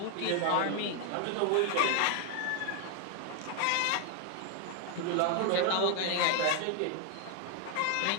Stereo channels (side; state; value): both; different; correlation 0.00